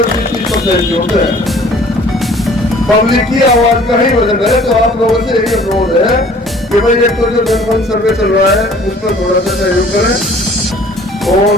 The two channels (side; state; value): both; normal; correlation 0.53